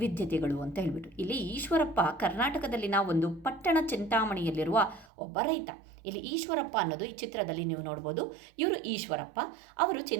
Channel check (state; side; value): drops out; left; at 5.1 s